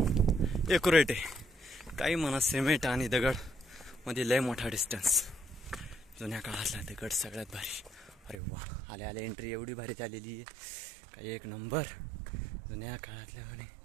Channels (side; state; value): left; drops out; at 8.4 s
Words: एक्युरेट आहे। काही म्हणा सिमेंट आणि दगड मध्ये लय मोठा डिस्टन्स। जुन्या काळातला दगड सगळ्यात भारी। अरे वा, आल्या आल्या एंट्री एवढी भारी झालेली आहे, काही एक नंबर। जुन्या काळातल्या म्हणे